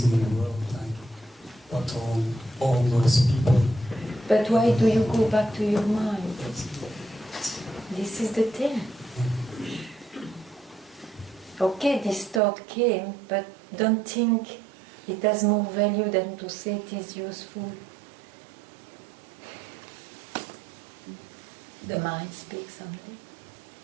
in the world, like what all those people. But why do you go back to your mind? This is the thing. Okay, this thought came, but don't think it has more value than to say it is useful. The mind speaks only.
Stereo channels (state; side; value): drops out; left; at 12.4 s